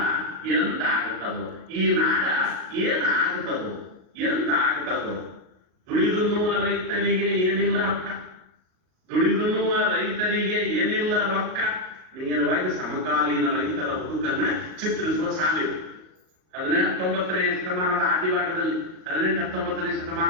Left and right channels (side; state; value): left; late; 38 ms